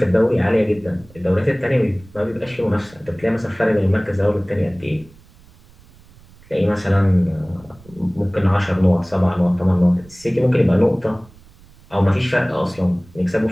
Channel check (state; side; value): noise; right; rumble, 25 dB below the sound